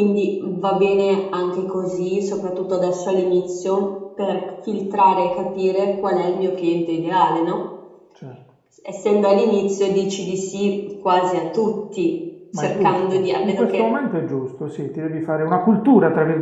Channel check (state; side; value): identical; both; correlation 1.00